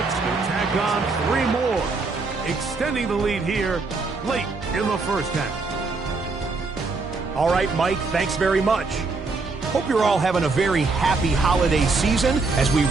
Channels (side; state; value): left; quieter; 4.0 dB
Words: will tack on 3 more, extending the lead here late in the first half. All right, Mike, thanks very much. Hope you're all having a very happy holiday season as we